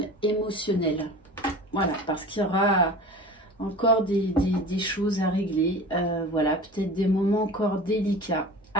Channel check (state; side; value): normal; both; correlation 0.37